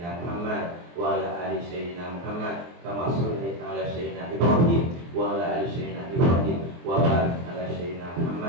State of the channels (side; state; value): left; late; 23 ms